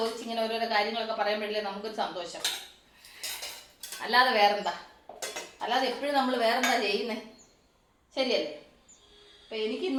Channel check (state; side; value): identical; both; correlation 1.00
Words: ഇങ്ങനെ ഓരോരോ കാര്യങ്ങളൊക്കെ പറയുമ്പോഴല്ലേ നമുക്കൊരു സന്തോഷം. അല്ലാതെ വേറെന്താ, അല്ലാതെ എപ്പോഴും നമ്മൾ വേറെന്താ ചെയ്യുന്നത്, ശരിയല്ലേ? അപ്പം